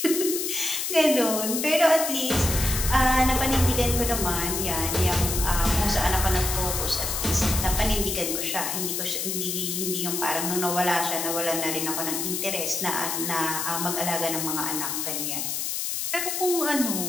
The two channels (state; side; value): noise; left; hiss, 2 dB below the sound